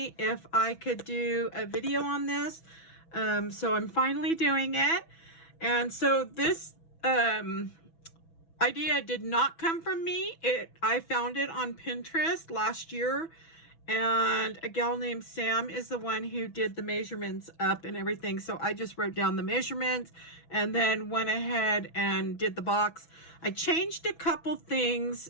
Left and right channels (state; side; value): late; right; 6.1 ms